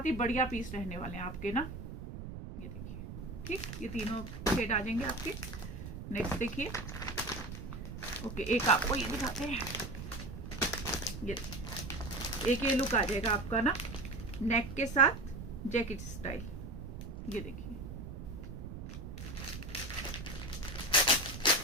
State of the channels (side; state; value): right; noise; rumble, 9 dB below the sound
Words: ही बढ़िया पीस रहने वाले हैं आपके ना। ये देखिए, ठीक। ये तीनों शेड आ जाएंगे आपके। नेक्स्ट देखिए, ओके, एक आपको ये दिखाते हैं। ये देखिए, एक ये लुक आ जाएगा आपका ना, नेक के साथ जैकेट स्टाइल। ये देखिए,